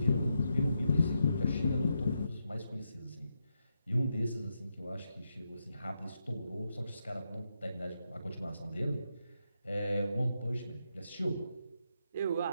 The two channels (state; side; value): inverted; both; correlation -0.83